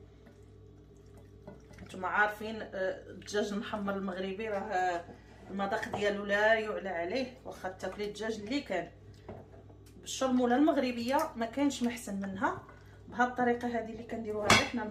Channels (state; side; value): identical; both; correlation 1.00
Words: نتوما عارفين الدجاج المحمر المغربي راه المذاق ديالو لا يعلى عليه. واخا تاكلي الدجاج اللي كان بالشرموله المغربيه ما كانش محسن منها. بهذه الطريقه هذه اللي كنديروها حنا